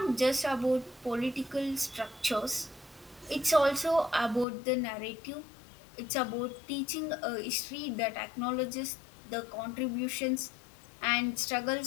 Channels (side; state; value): right; drops out; at 4.5 s